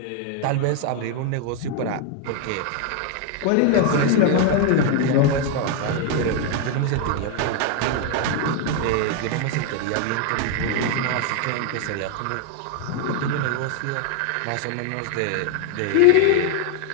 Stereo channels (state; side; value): different; both; correlation 0.01